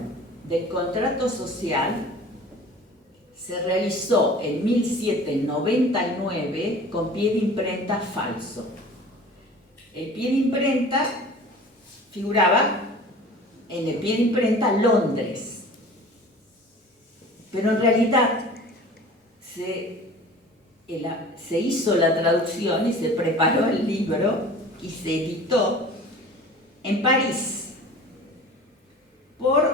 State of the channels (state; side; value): normal; both; correlation 0.42